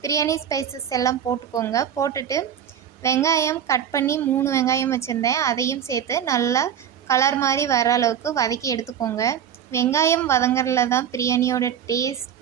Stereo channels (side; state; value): left; quieter; 9.1 dB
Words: பிரியாணி ஸ்பைசஸ் எல்லாம் போட்டுக்கோங்க. போட்டுட்டு வெங்காயம் கட் பண்ணி 3 வெங்காயம் வச்சுருந்தேன், அதையும் சேர்த்து நல்லா கலர் மாதிரி வர அளவுக்கு வதக்கி எடுத்துக்கோங்க. வெங்காயம் வதங்குறதுல தான் பிரியாணியோட